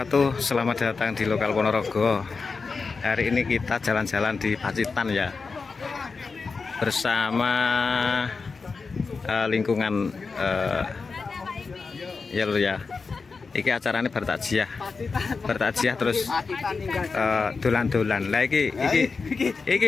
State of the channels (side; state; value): right; quieter; 4.6 dB